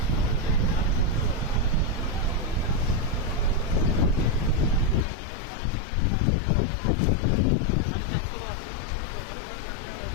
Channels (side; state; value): right; drops out; at 5.0 s